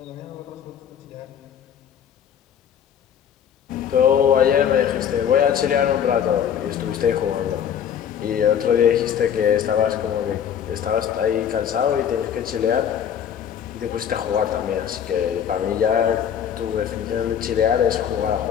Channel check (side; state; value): right; quieter; 8.7 dB